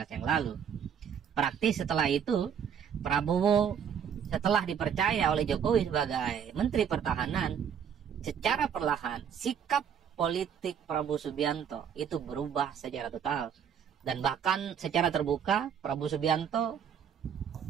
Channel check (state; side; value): quieter; left; 8.0 dB